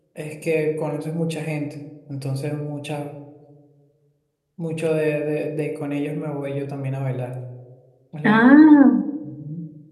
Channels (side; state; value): both; identical; correlation 1.00